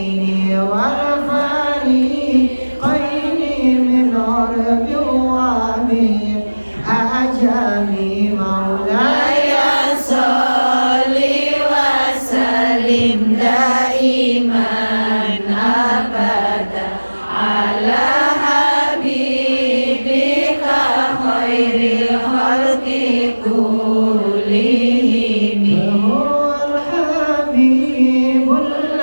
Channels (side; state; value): both; inverted; correlation -1.00